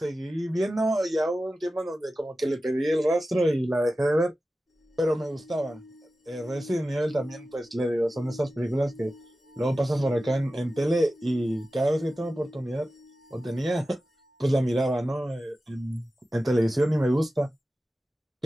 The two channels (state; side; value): normal; both; correlation 0.94